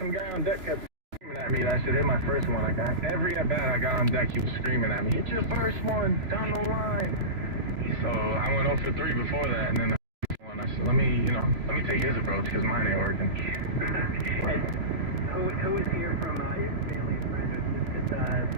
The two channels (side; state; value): left; late; 3.0 ms